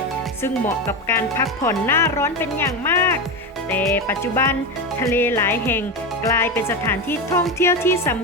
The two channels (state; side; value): normal; both; correlation 0.18